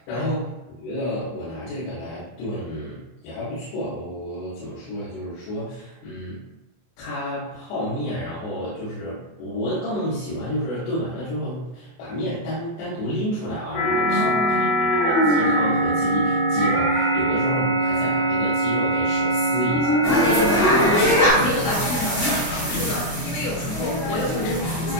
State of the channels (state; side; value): late; right; 24 ms